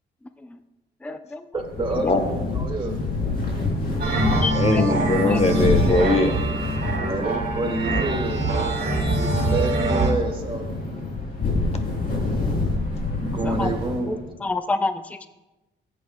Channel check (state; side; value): normal; both; correlation 0.56